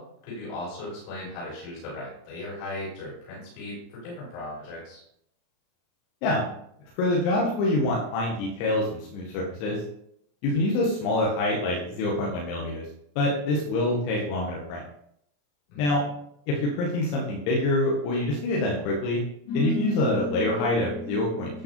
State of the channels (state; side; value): late; right; 34 ms